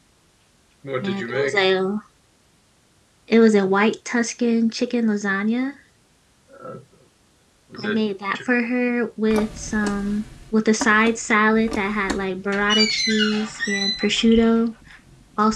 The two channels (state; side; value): identical; both; correlation 1.00